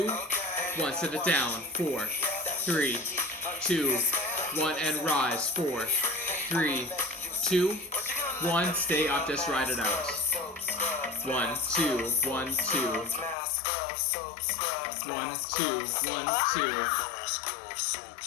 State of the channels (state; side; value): drops out; right; at 13.4 s